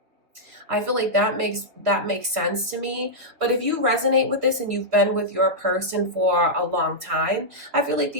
I feel like that makes sense to me. But if you resonate with this and you've been with your person for a long time, I feel like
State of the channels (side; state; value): left; late; 2.8 ms